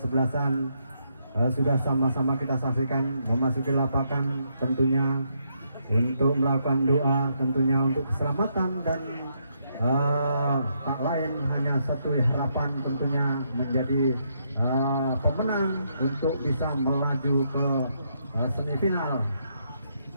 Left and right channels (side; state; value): both; inverted; correlation -0.77